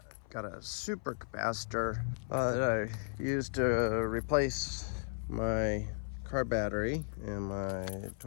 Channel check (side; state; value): right; silent; 54 dB below the other